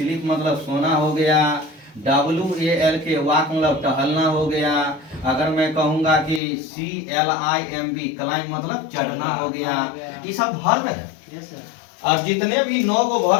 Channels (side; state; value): right; drops out; at 6.4 s